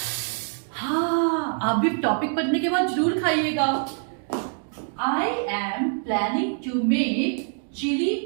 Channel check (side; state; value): left; silent; 55 dB below the other